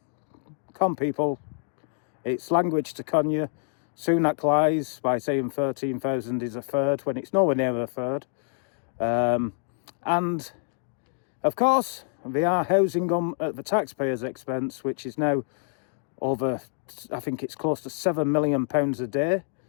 people. It's language to con you. Sunak lies by saying 13,000 is a third when it's nowhere near a third. And of course, they are housing them at the taxpayers' expense, which is now over, I think it's close to £7 million a day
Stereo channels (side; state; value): right; silent; digital silence